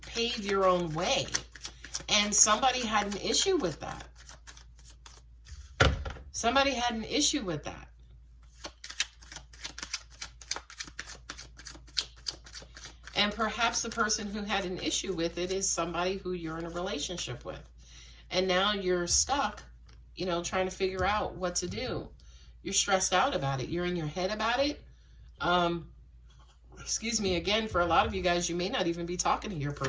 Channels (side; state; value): both; identical; correlation 1.00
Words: pave your own way. And somebody had an issue with that. Somebody had an issue with that. And perhaps the person who had an issue with it is somebody who you're in a relationship with. And now you're stuck, you know, trying to figure out what to do. You're stressed out about it. You're in your head about it. Excuse me, again, for a lot of you guys, you may not even be talking to your